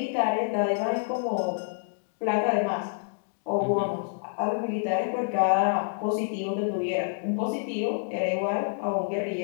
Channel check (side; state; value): right; silent; digital silence